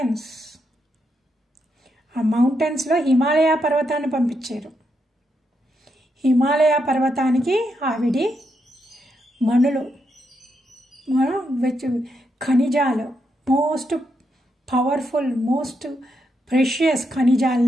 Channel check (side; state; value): both; normal; correlation 0.81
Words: ఆ మౌంటైన్స్లో హిమాలయ పర్వతాన్ని పంపించారు. హిమాలయ పర్వతానికి ఆవిడి మణులు, ఖనిజాలు, మోస్ట్ పవర్ఫుల్ మోస్ట్ ప్రెషియస్